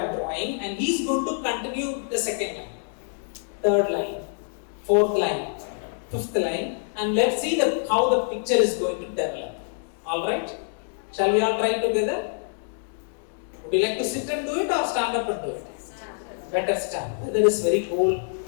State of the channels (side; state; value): right; silent; digital silence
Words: drawing, and he is going to continue the second line, third line, fourth line, fifth line, and let's see how the picture is going to develop. Alright? Shall we all try together? Would you like to sit and do it or stand up and do it? Better stand. Weather is very cold